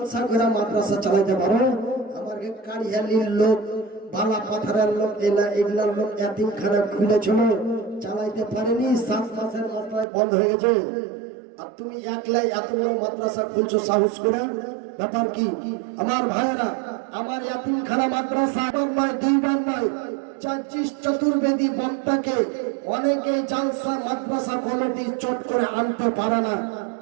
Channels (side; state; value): left; drops out; at 10.1 s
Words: করে মাদ্রাসা চালাইতে পারো? আমার কারিয়ালির লোক, বালা পাথরের লোক, এগুলার লোক এতিমখানা খুলেছিল, চালাইতে পারেনি, 7 মাসের মাত্রায় বন্ধ হয়ে গেছে। আর তুমি একলাই এত বড় মাদ্রাসা খুলছো সাহস করে, ব্যাপার কি? আমার ভাইয়েরা, আমার এতিমখানা মাদ্রাসা একবার নয়, 2বার নয়, 24 চতুর্বেদী বক্তাকে অনেকে জালসা মাদ্রাসা কমিটি চট করে আনতে পারে না,